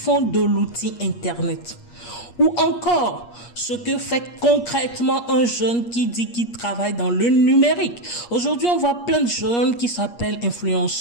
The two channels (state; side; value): late; right; 8.4 ms